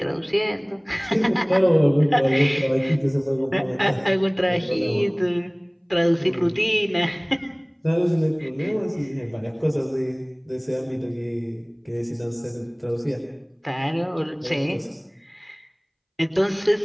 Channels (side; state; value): both; identical; correlation 1.00